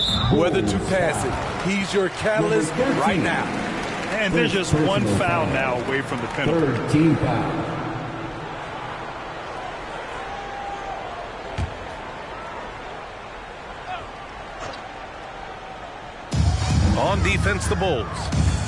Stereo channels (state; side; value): identical; both; correlation 1.00